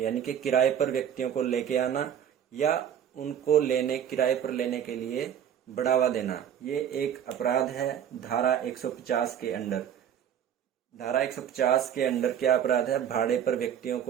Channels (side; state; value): left; quieter; 9.3 dB